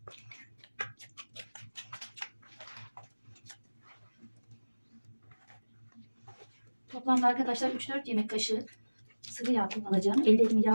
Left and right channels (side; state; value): both; inverted; correlation -1.00